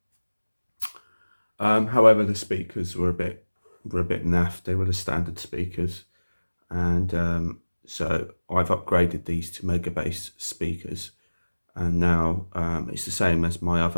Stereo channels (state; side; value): inverted; both; correlation -1.00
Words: However, the speakers were a bit naff. They were the standard speakers, and so I've upgraded these to mega bass speakers, and now it's the same as my